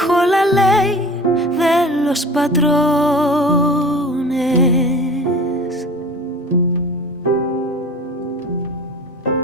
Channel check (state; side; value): normal; both; correlation 0.39